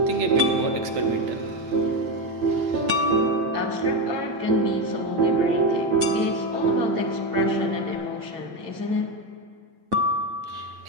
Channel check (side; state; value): left; late; 8.9 ms